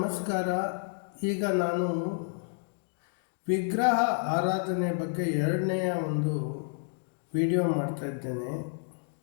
ಈಗ ನಾನು ವಿಗ್ರಹ ಆರಾಧನೆ ಬಗ್ಗೆ ಎರಡನೆಯ ಒಂದು ವಿಡಿಯೋ ಮಾಡ್ತಾ ಇದ್ದೇನೆ.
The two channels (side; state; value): right; silent; digital silence